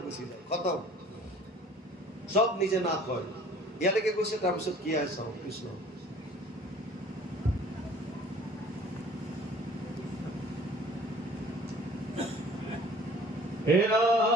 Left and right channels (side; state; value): both; normal; correlation 0.51